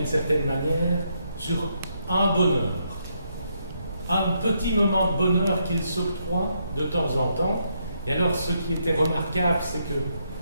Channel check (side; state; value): both; inverted; correlation -0.77